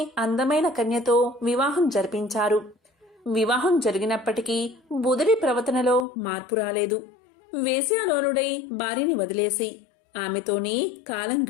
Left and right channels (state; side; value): drops out; right; at 6.1 s